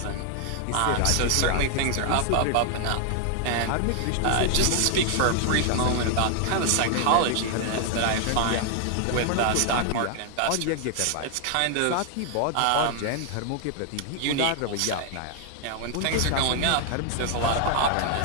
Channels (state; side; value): different; both; correlation 0.00